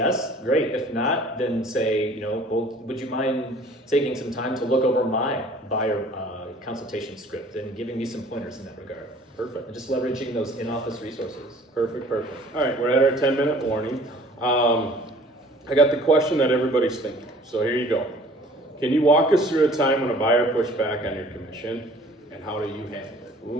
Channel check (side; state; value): both; normal; correlation 0.51